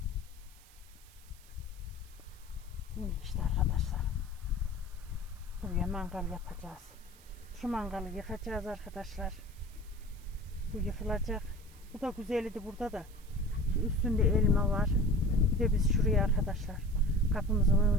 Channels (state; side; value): noise; right; hiss, 25 dB below the sound